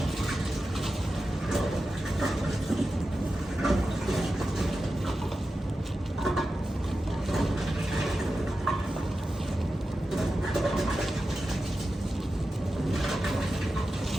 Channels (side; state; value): both; normal; correlation 0.92